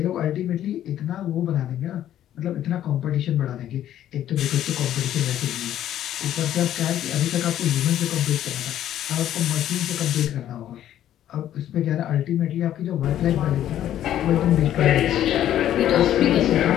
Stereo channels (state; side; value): quieter; right; 11.7 dB